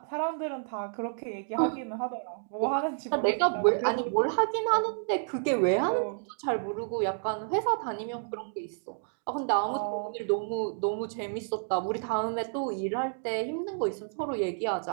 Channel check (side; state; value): left; silent; digital silence